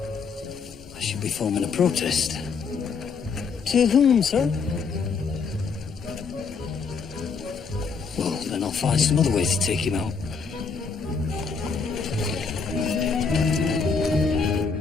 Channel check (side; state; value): right; quieter; 5.3 dB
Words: I should be forming a protest. To whom, sir? Well, then I'll find some other way to take him out.